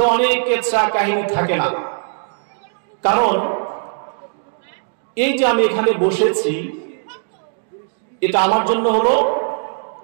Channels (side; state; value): left; silent; digital silence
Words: অনেক কেচ্ছা কাহিনী থাকে না, কারণ এই যে আমি এখানে বসেছি এটা আমার জন্য হলো